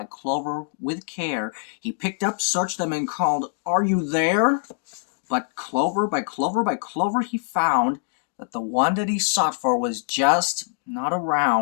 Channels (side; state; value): right; silent; digital silence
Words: clover, with care, he picked up, searched them, and called, "Are you there?" But clover by clover by clover he found that the one that he sought for was just not